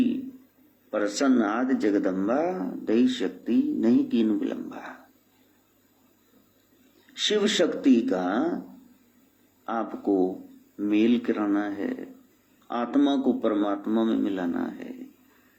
प्रसन्न आदि जगदम्बा, दई शक्ति नहीं कीन विलंबा। शिव शक्ति का आपको मेल कराना है, आत्मा को परमात्मा में मिलाना है,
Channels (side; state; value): both; identical; correlation 1.00